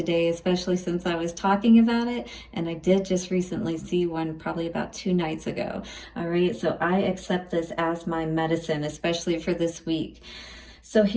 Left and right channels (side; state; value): both; identical; correlation 1.00